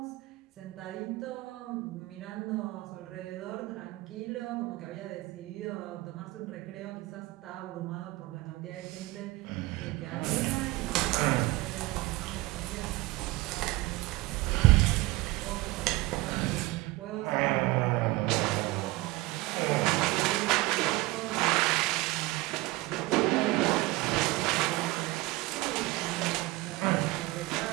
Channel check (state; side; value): quieter; left; 20.4 dB